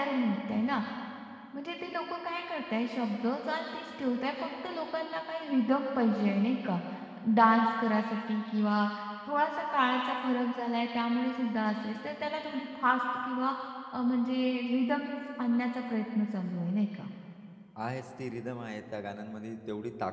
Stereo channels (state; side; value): identical; both; correlation 1.00